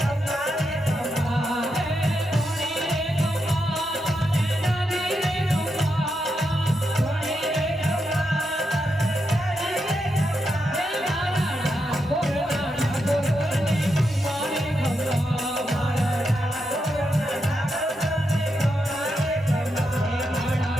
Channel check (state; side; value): normal; both; correlation 0.84